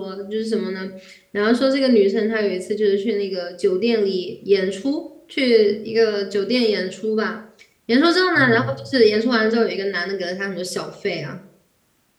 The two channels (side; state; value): both; identical; correlation 1.00